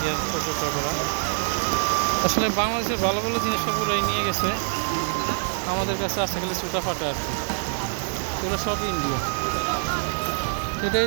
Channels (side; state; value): left; silent; 62 dB below the other